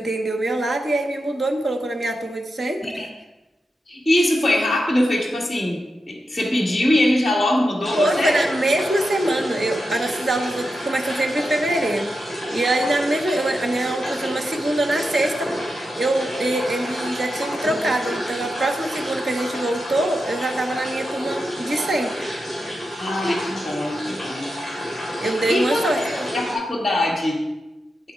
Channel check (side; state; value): both; normal; correlation 0.88